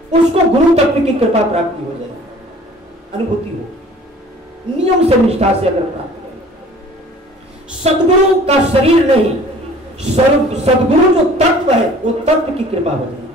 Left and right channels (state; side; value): normal; both; correlation 0.50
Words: उसको गुरु तत्व की कृपा प्राप्ति हो जाए, अनुभूति हो, नियम से निष्ठा से अगर प्राप्त करें। सदगुरु का शरीर नहीं, सदगुरु जो तत्व है वो तत्व की कृपा हो जाए।